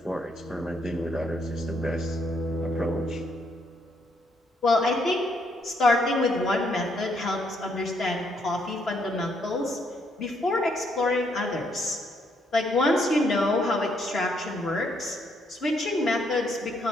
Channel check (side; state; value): both; normal; correlation 0.72